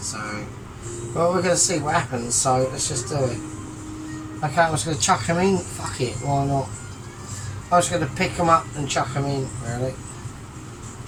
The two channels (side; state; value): both; identical; correlation 1.00